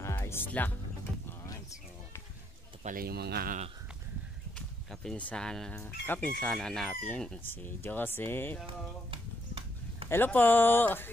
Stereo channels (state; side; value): normal; both; correlation 0.75